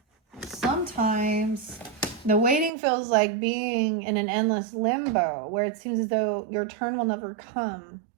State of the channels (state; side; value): drops out; left; at 2.7 s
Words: Sometimes the waiting feels like being in an endless limbo where it seems as though your turn will never come.